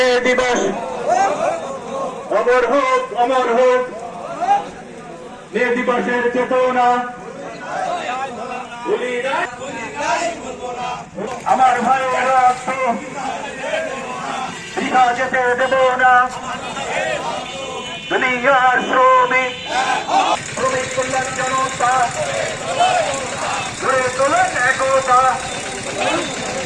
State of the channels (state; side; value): identical; both; correlation 1.00